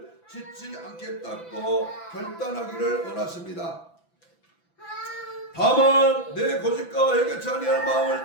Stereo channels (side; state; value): right; late; 6.0 ms